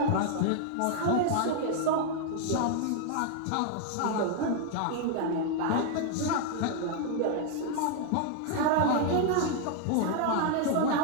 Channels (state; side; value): different; both; correlation 0.00